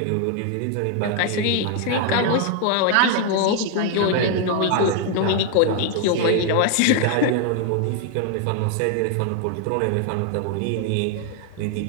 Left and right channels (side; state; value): both; different; correlation 0.00